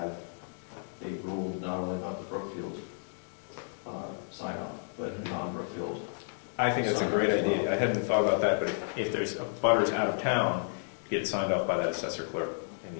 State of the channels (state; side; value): silent; right; digital silence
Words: a rule not only about the Brookfield sign-off, but non-Brookfield? I think that's a great idea. I hadn't thought about that, but if there's abutters out of town, get signed off by that assessor clerk in